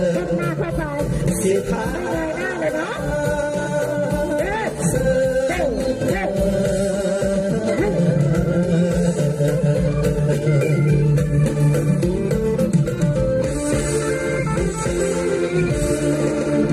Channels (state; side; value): identical; both; correlation 1.00